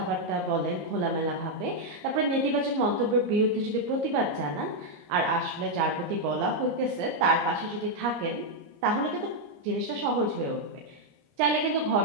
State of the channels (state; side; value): late; left; 29 ms